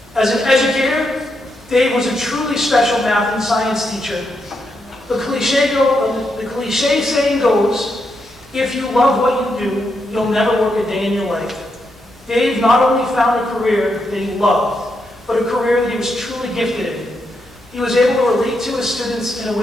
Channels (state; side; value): normal; both; correlation 0.82